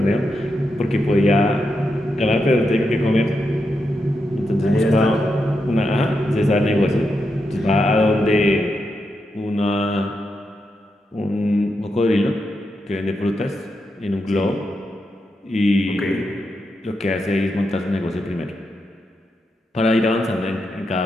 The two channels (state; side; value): normal; both; correlation 0.85